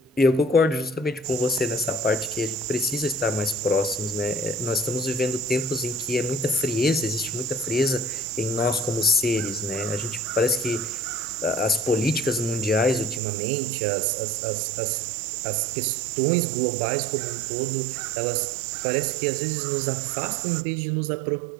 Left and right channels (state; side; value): drops out; left; at 13.2 s